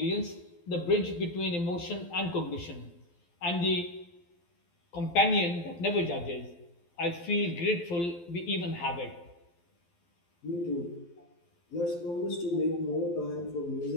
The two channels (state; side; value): late; right; 12 ms